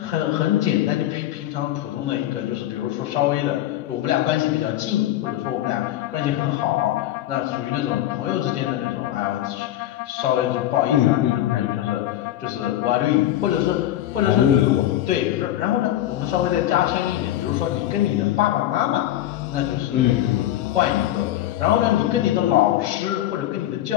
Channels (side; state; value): right; quieter; 13.4 dB